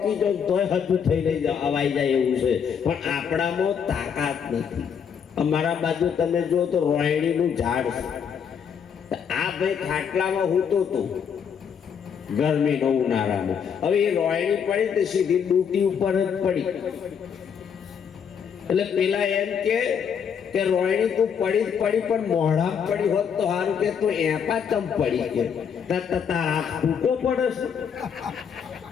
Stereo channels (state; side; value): quieter; right; 7.3 dB